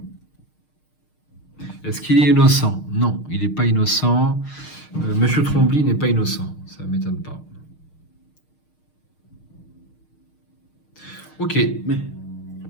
Est-ce qu'il est innocent? Non, il n'est pas innocent. Monsieur Trombley n'est pas innocent. Ça ne m'étonne pas. Ok. Mais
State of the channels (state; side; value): late; right; 6.5 ms